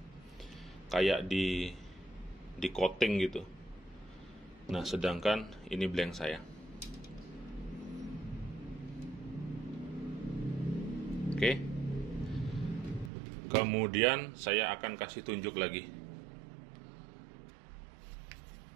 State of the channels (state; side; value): drops out; left; at 13.1 s